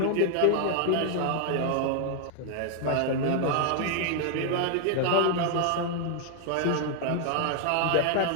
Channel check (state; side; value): different; both; correlation 0.00